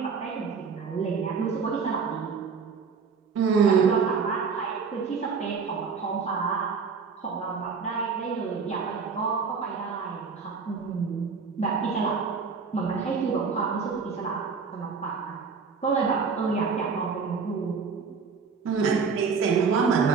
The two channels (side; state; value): left; quieter; 5.5 dB